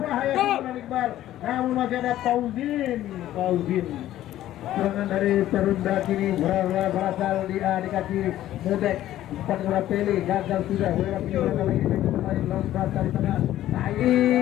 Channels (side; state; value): right; quieter; 13.4 dB